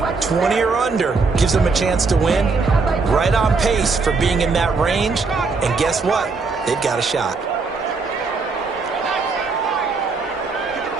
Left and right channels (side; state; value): left; quieter; 4.3 dB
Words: 20 or under gives them a chance to win. Right on pace for being in that range. And guess what? They've got a shot.